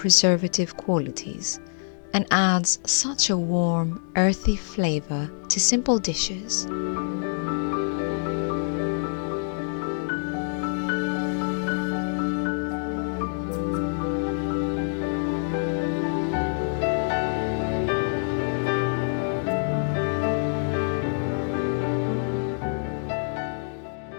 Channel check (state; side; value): silent; right; digital silence